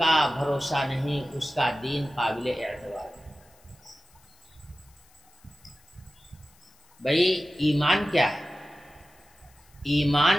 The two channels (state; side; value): noise; left; hiss, 30 dB below the sound